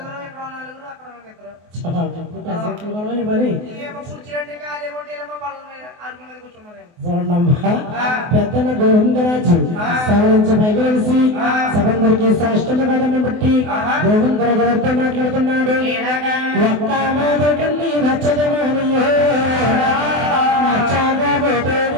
ఇక్కడ నలుగురు అక్కడ పెసట్లు కొనమని మరి కూర్చుంటే కాలే కొట్టేలమ్మ పళ్ళ మీద అరుగు మీద కూర్చున్నారు. చూడమ్మా పెద్దన్న గోవిందరాజు సవరించి పైకి సభందరికి సాష్టమి బట్టి గోవిందరాజు గారితో మాట్లాడుతున్నాడు. ఒక్క మాదకండి నచ్చదమారియో నచ్చగా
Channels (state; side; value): late; left; 24 ms